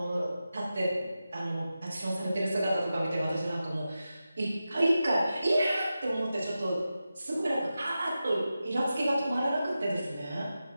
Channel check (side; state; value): both; inverted; correlation -0.92